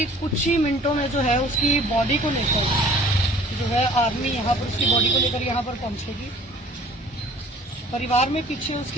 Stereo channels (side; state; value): both; normal; correlation 0.51